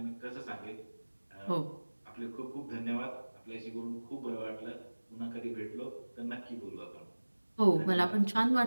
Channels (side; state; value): both; inverted; correlation -1.00